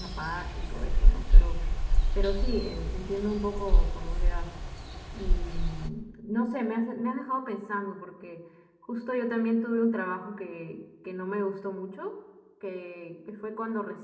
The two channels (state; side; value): identical; both; correlation 1.00